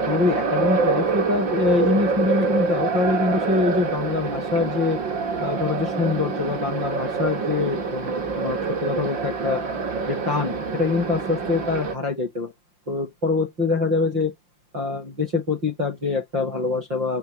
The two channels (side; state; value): left; late; 5.7 ms